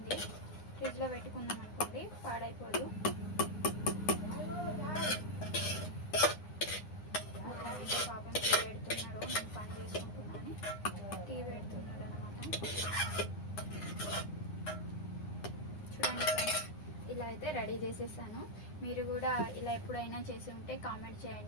ఫ్రిడ్జ్లో పెట్టుకున్నాం అనుకోండి పాడైపోదు. పాపం టీ పెడుతున్నారు, నేను పని చేసుకుంటున్నాను, టీ పెడుతున్నారు అనమాట. చూడండి ఫ్రెండ్స్, ఇలా అయితే రెడీ చేసేసాను. మీరు కూడా ఇలా ఎప్పుడైనా చేసి ఉంటే కామెంట్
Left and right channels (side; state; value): right; late; 9.7 ms